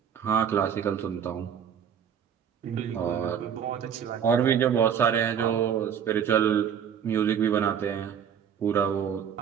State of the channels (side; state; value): left; quieter; 8.2 dB